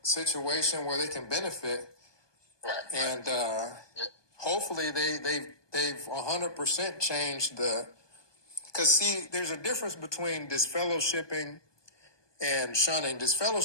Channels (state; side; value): late; right; 1.2 ms